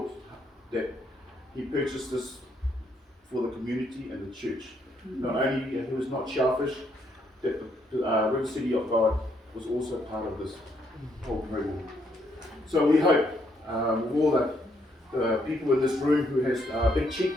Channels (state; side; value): normal; both; correlation 0.73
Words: that He purchased this for the community and the church. Not only He was not selfish, that the River City of God was also part of this whole program. So we hope with all the people in this room who has big